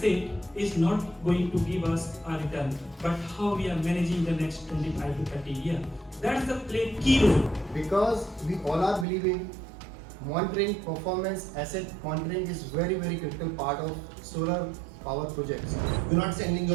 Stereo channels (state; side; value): drops out; left; at 9.1 s